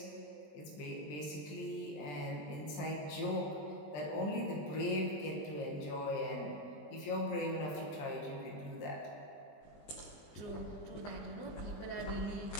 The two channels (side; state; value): right; late; 20 ms